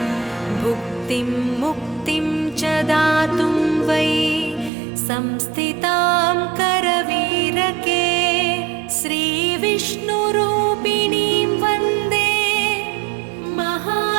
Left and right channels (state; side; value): drops out; left; at 4.7 s